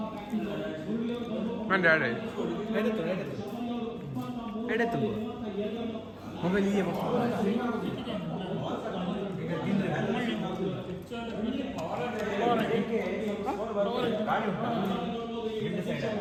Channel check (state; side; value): identical; both; correlation 1.00